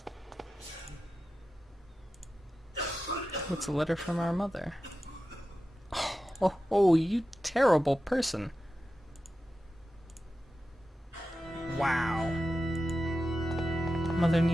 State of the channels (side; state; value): both; normal; correlation 0.92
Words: What's a letter from our mother? Oh, you terrible person. Wow. Mother